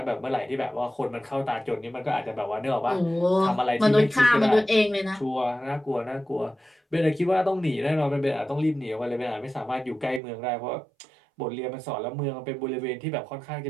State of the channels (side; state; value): left; drops out; at 10.2 s